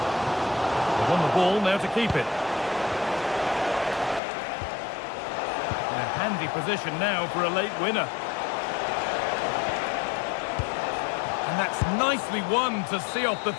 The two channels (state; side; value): drops out; right; at 4.2 s